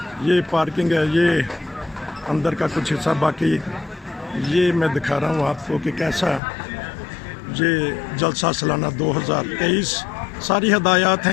ये पार्किंग है, ये अंदर का कुछ हिस्सा, बाकी ये मैं दिखा रहा हूँ आपको कि कैसा ये जलसा सालाना 2023। सारी हदायत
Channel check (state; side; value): drops out; right; at 6.4 s